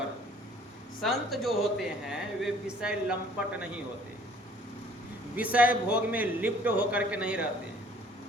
संत जो होते हैं वे विषय लंपट नहीं होते। विषय भोग में लिप्त होकर के नहीं रहते हैं।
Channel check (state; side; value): normal; both; correlation 0.56